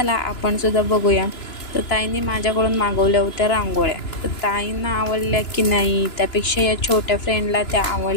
आपण सुद्धा बघूया. तर ताईने माझ्याकडून मागवल्या होत्या रांगोळ्या. तर ताईंना आवडल्या की नाही, त्यापेक्षा या छोट्या फ्रेंडला त्या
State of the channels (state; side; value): late; right; 2.9 ms